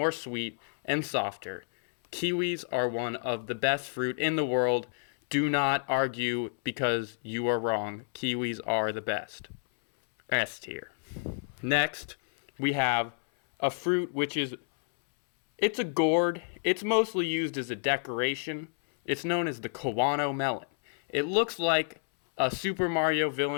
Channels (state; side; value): silent; right; 58 dB below the other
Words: sweet and softer. Kiwis are one of the best fruit in the world. Do not argue because you are wrong. Kiwis are the best. S tier. Next, we have a fruit which it's a gourd. It's mostly used as a decoration. It's known as the Kawano Melon. It looks like a Super Mario